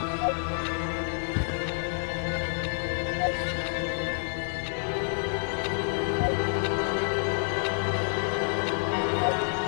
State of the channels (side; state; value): right; silent; 59 dB below the other